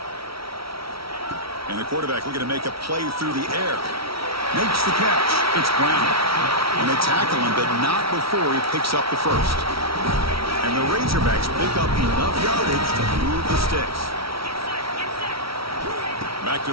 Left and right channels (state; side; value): late; left; 0.75 ms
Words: And the quarterback looking to make a play through the air. Makes the catch. It's Brown. And they tackle him, but not before he picks up the first. And the Razorbacks pick up enough yardage to move the sticks. Back